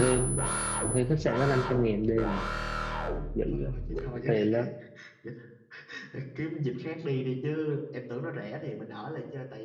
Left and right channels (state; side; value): identical; both; correlation 1.00